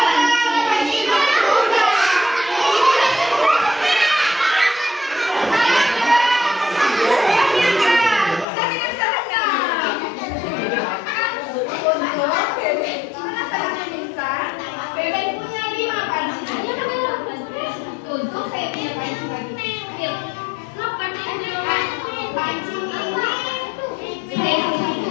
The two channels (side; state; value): right; drops out; at 8.5 s